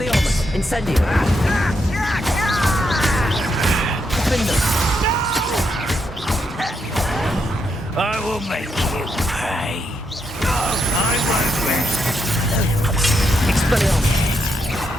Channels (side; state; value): both; normal; correlation 0.80